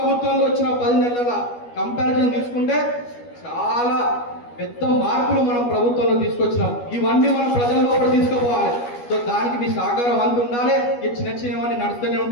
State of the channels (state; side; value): late; right; 12 ms